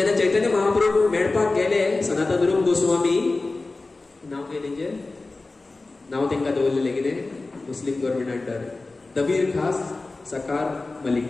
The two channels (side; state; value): right; quieter; 3.4 dB